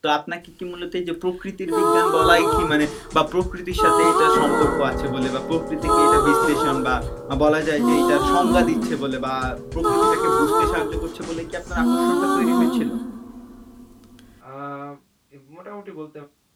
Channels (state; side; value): identical; both; correlation 1.00